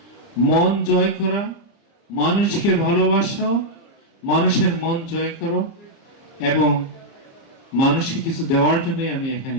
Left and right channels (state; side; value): late; right; 30 ms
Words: মন জয় করা, মানুষকে ভালোবাসা, মানুষের মন জয় করো এবং মানুষকে কিছু দেওয়ার জন্য আমি এখানে